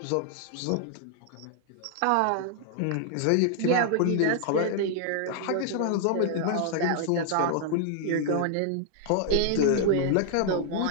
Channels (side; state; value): both; different; correlation -0.01